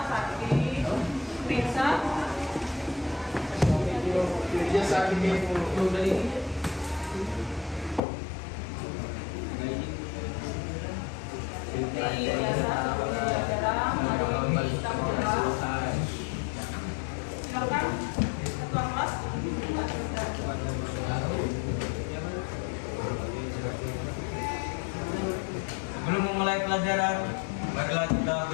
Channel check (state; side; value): drops out; right; at 8.0 s